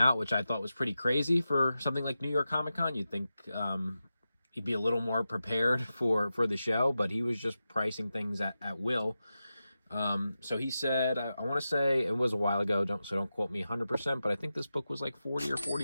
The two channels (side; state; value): both; inverted; correlation -0.92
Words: which I thought was pretty crazy for something like New York Comic Con. You'd think he'd be a little more prepared for the show, but he was just pricing things at will. So he said, I want to say it was a while ago, don't quote me 100%, but I think this book was like 40 or